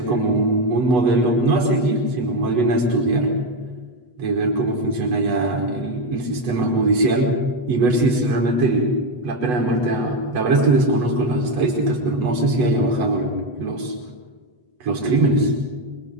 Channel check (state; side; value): late; left; 8.1 ms